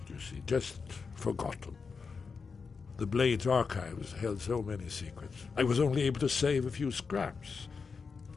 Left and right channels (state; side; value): quieter; right; 5.1 dB